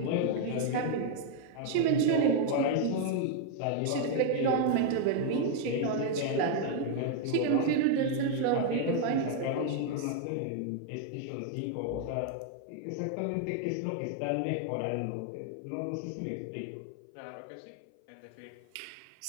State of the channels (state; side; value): different; both; correlation 0.00